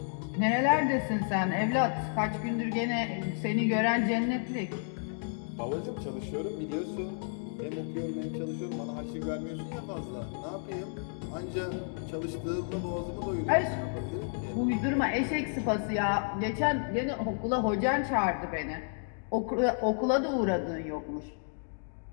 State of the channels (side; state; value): right; silent; digital silence